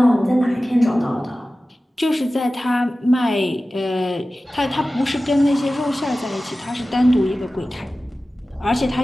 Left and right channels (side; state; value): both; normal; correlation 0.96